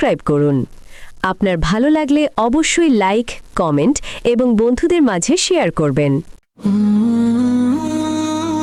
করুন। আপনার ভালো লাগলে অবশ্যই লাইক, কমেন্ট এবং বন্ধুদের মাঝে শেয়ার করবেন।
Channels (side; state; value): both; identical; correlation 1.00